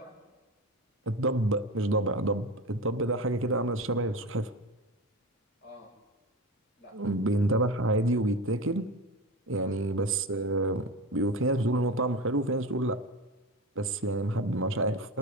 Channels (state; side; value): normal; both; correlation 0.26